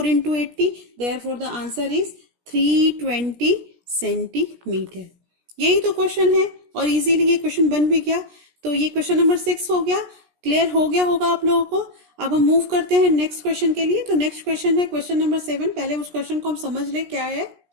into 80, therefore the answer is 320 centimetre. यही तो क्वेश्चन है और इजीली ये क्वेश्चन बन भी गया। तो ये क्वेश्चन नंबर 6 हो गया, क्लियर हो गया होगा आप लोगों को। अब हम मूव करते हैं नेक्स्ट क्वेश्चन के लिए। तो नेक्स्ट क्वेश्चन है क्वेश्चन नंबर 7। पहले उस क्वेश्चन को हम समझ ले क्या है।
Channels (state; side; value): late; left; 17 ms